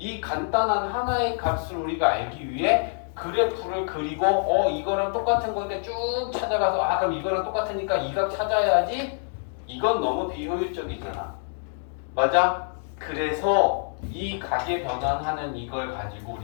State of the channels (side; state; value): right; silent; 61 dB below the other